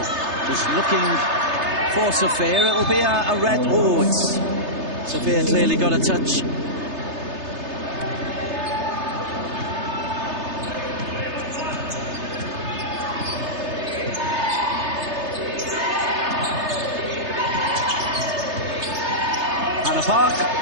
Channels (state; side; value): late; left; 3.3 ms